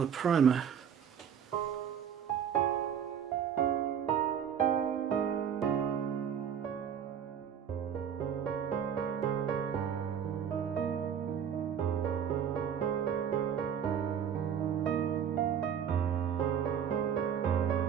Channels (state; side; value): quieter; left; 8.2 dB